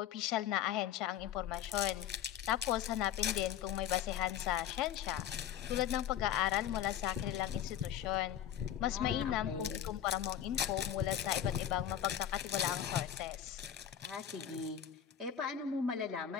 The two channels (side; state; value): right; quieter; 10.3 dB